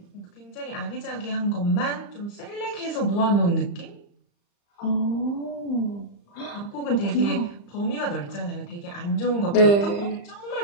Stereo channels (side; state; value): right; late; 35 ms